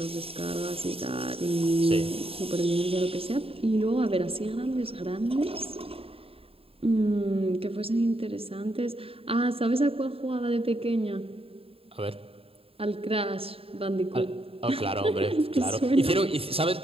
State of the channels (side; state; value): left; late; 0.27 ms